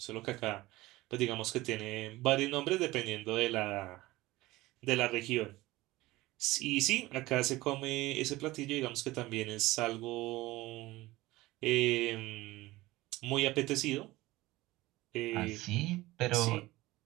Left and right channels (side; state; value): left; quieter; 18.9 dB